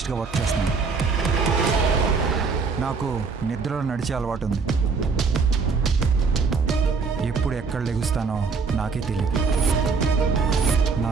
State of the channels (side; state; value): left; quieter; 4.9 dB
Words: వర్క్ చేస్తున్నాను. నాకు నిద్రలో నడిచే అలవాటు ఉంది. ఎప్పుడు ఎక్కడ లెగుస్తానో నాకే తెలియదు. నా